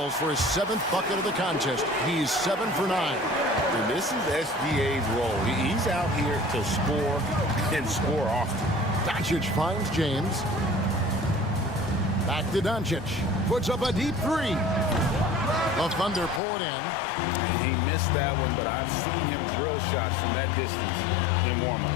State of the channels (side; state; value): right; drops out; at 16.4 s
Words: for his 7th bucket of the contest. He's 7 for 9. And this is SGA's role. He's out here to score and score often. Doncic finds James. Back to Doncic. Puts up a deep 3. The Thunder pull it in. He missed that one, but I've seen him drill shots from that distance in warm-up.